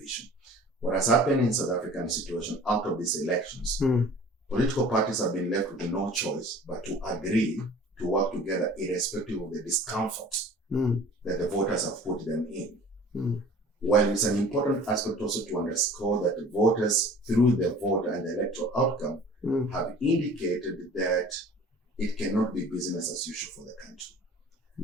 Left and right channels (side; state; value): both; normal; correlation 0.46